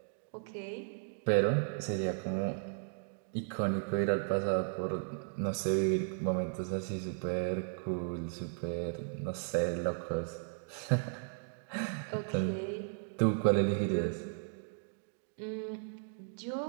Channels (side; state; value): left; silent; digital silence